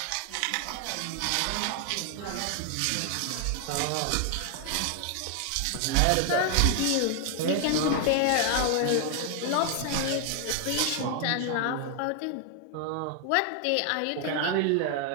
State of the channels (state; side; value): different; both; correlation 0.00